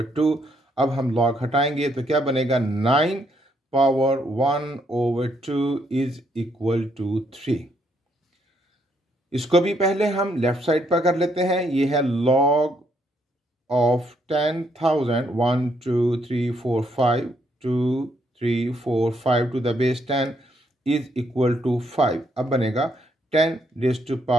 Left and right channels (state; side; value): normal; both; correlation 0.73